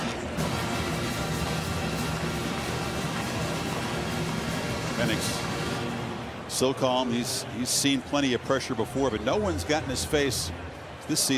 Penix so calm. He's seen plenty of pressure before, but no one's gotten his face this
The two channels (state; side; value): identical; both; correlation 1.00